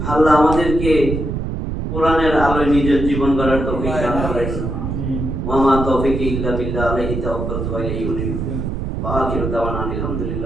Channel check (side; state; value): right; noise; rumble, 3 dB below the sound